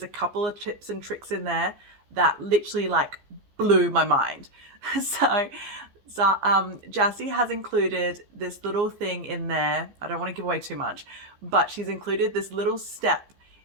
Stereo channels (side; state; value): left; late; 15 ms